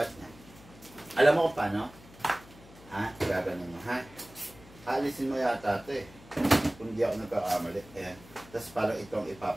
niya? Alam mo kung paano? Gaganon mo, ha? Alisin mo yata ito eh. Kung di ako nagkakamali. Ayan. Tapos parang itong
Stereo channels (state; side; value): noise; left; hum, 21 dB below the sound